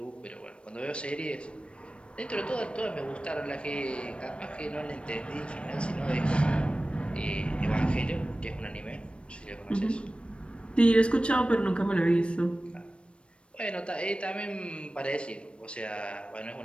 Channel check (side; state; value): right; late; 0.058 ms